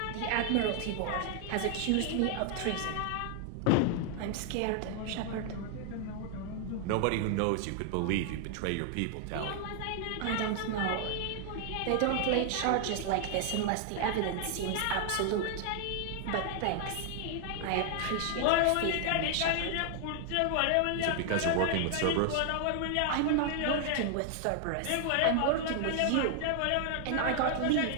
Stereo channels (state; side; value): different; both; correlation 0.00